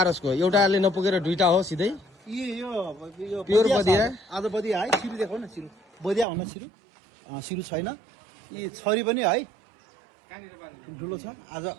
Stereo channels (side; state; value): left; drops out; at 6.2 s